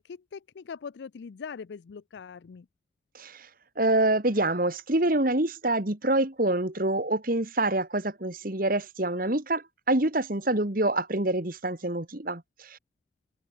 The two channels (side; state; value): both; normal; correlation 0.03